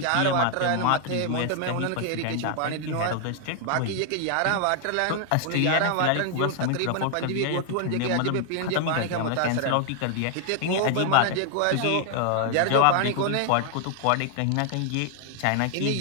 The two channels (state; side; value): different; both; correlation 0.00